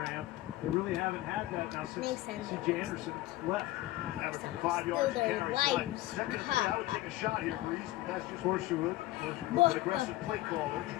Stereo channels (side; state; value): right; quieter; 17.1 dB